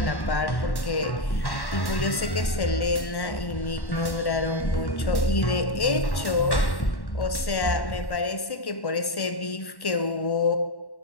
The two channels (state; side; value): late; right; 1.1 ms